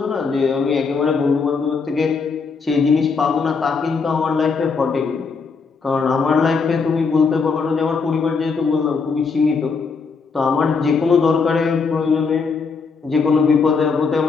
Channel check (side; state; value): right; quieter; 5.0 dB